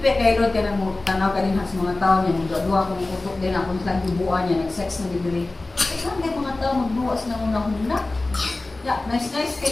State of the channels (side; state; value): right; quieter; 3.1 dB